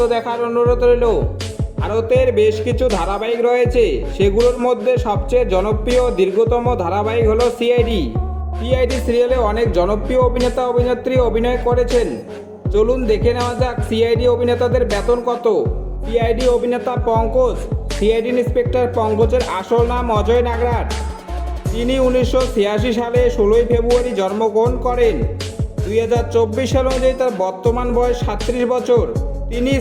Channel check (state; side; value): identical; both; correlation 1.00